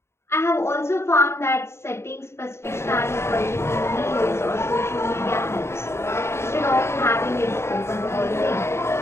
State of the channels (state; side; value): late; right; 0.13 ms